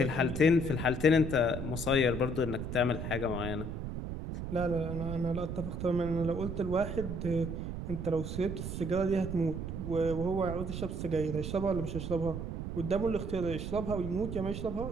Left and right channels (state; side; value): noise; right; rumble, 5 dB below the sound